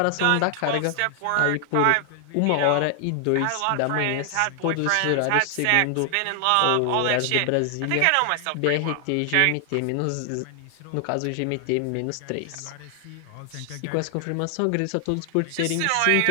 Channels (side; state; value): both; different; correlation 0.00